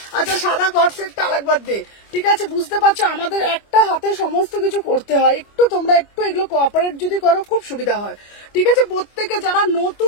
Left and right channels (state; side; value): late; right; 25 ms